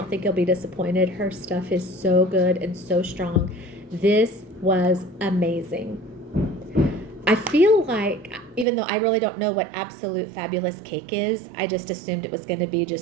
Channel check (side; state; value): left; drops out; at 8.7 s